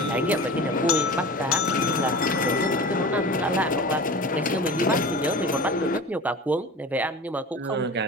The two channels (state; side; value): normal; both; correlation 0.35